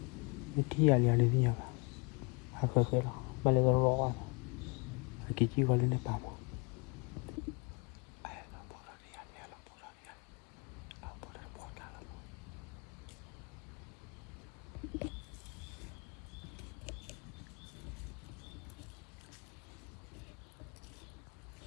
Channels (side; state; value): right; quieter; 30.2 dB